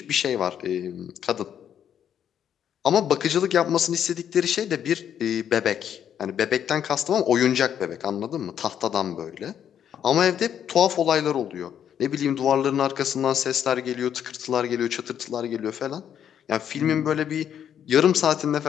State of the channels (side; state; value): right; quieter; 9.2 dB